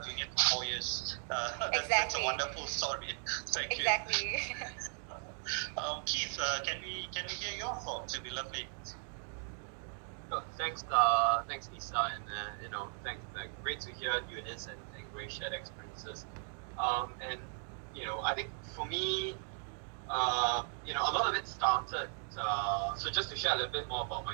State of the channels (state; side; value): silent; left; 53 dB below the other